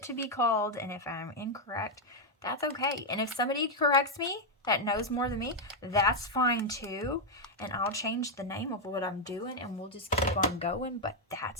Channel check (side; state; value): both; normal; correlation 0.00